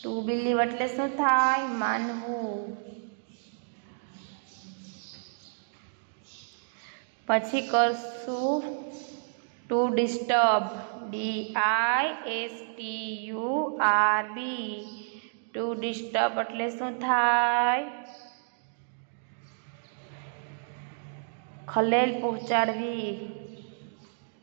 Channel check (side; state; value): left; silent; digital silence